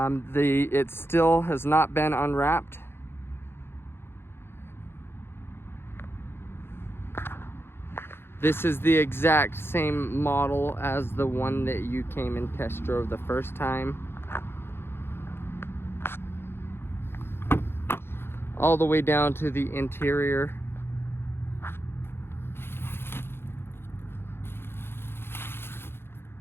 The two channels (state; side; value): late; right; 0.11 ms